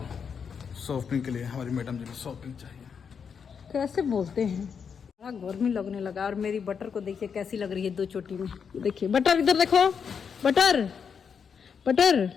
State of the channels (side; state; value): right; quieter; 6.6 dB